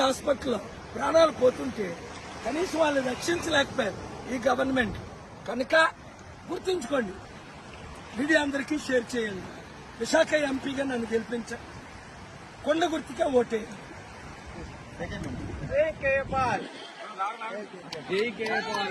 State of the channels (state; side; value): identical; both; correlation 1.00